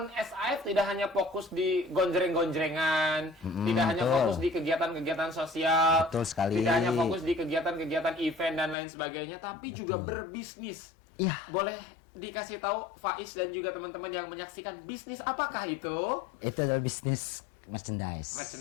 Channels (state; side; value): drops out; right; at 8.8 s